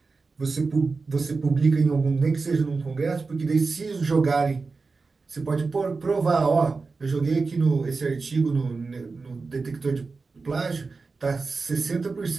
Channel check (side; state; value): left; quieter; 4.2 dB